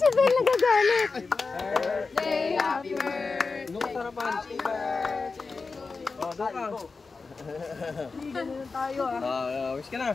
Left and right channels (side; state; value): right; quieter; 4.3 dB